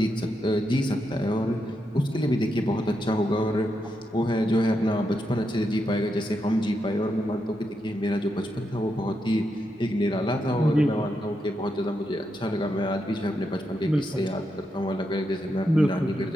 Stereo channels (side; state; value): both; normal; correlation 0.84